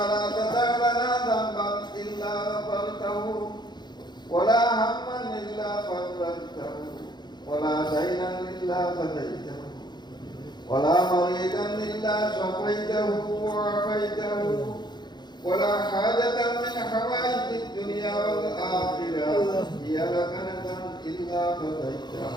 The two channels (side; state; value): right; late; 0.21 ms